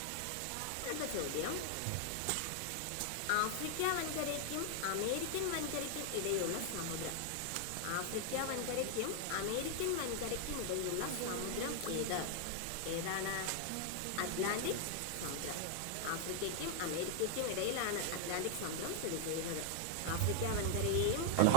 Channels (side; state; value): both; different; correlation 0.00